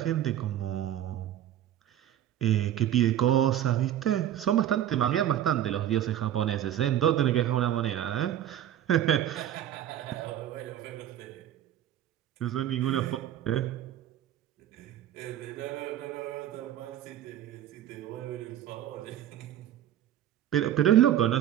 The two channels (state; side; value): quieter; left; 11.4 dB